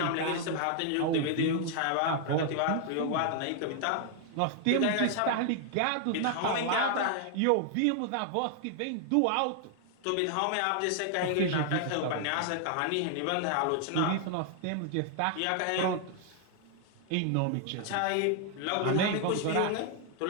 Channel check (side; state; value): both; different; correlation 0.00